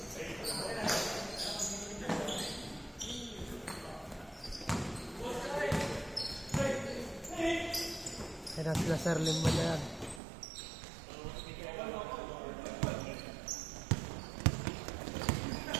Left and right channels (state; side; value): drops out; left; at 10.2 s